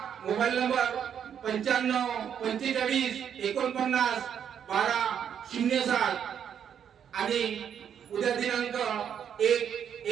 मोबाईल नंबर 95 45 49 1207 आणि उद्या दिनांक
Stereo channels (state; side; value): quieter; left; 8.5 dB